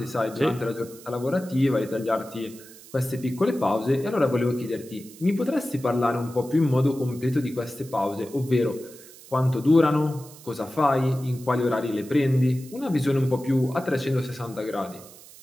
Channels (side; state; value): right; noise; hiss, 20 dB below the sound